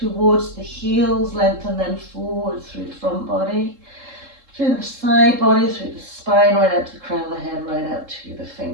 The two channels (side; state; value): left; late; 3.7 ms